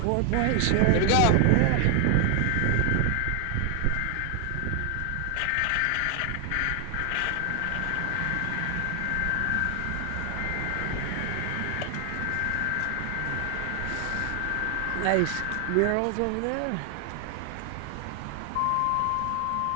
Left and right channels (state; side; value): different; both; correlation 0.00